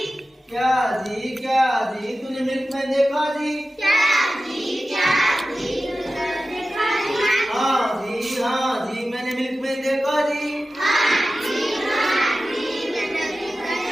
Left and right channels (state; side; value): normal; both; correlation 0.94